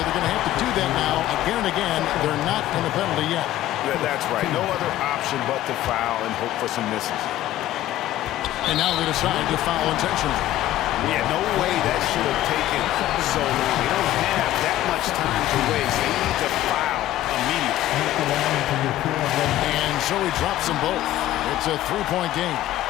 They're going to have to do that now again and again. They're not in the penalty yet. Yeah, that's right. No other option but to foul and hope for some misses. And now they decide to foul intentionally. Yeah, no way that should have taken so long. They don't have that much time to waste. They need to foul immediately. And so he drops them both. It's a 3-point game.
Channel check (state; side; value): quieter; right; 14.1 dB